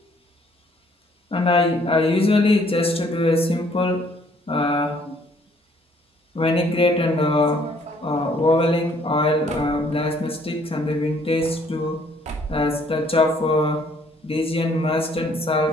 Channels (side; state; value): both; normal; correlation 0.63